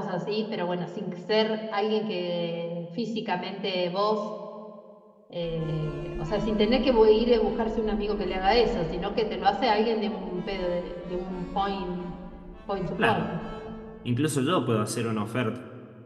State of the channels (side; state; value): both; identical; correlation 1.00